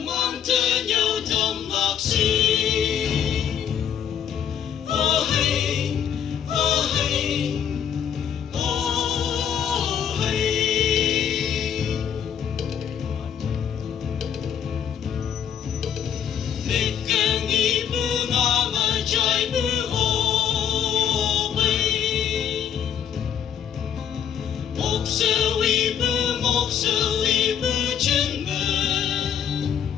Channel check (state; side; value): quieter; right; 8.6 dB